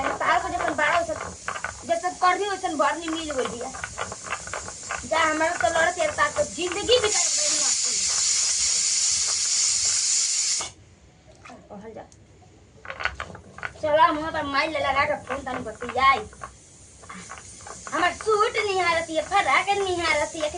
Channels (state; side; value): identical; both; correlation 1.00